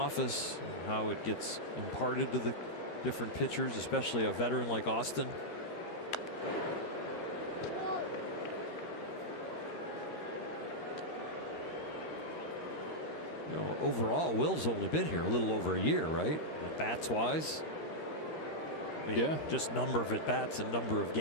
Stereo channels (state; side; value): late; right; 13 ms